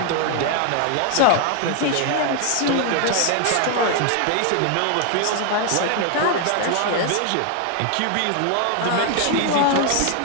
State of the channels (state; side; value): different; both; correlation 0.00